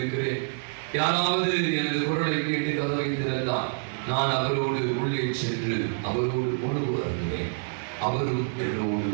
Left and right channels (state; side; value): silent; left; 60 dB below the other